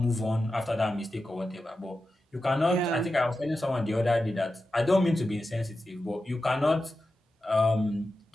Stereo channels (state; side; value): normal; both; correlation 0.91